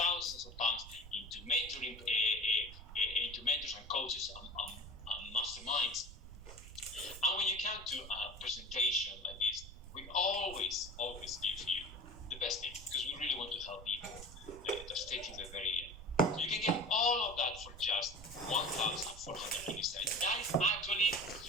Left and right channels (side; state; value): right; noise; rumble, 14 dB below the sound